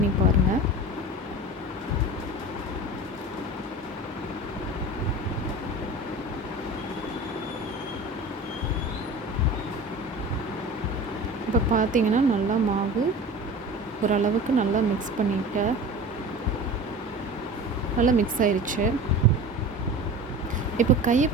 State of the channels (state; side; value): normal; both; correlation 0.36